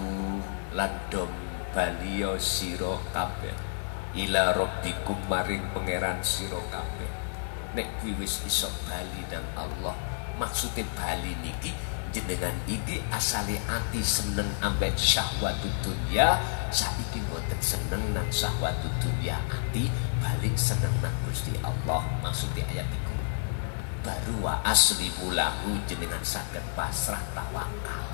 landom baliyo sira kabeh ila rabbikum maring pangeran sira kabeh. Nek wis iso bali nang Allah, maksude bali niki jenengan iki asale ati seneng ambek syahwatud dunya, saiki boten seneng nang syahwatud dunya, ati balik seneng nang Gusti Allah. Maksudnya ayat itu baru wa aslimu lahu, jenengan saged pasrah tawakal.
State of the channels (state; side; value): silent; right; digital silence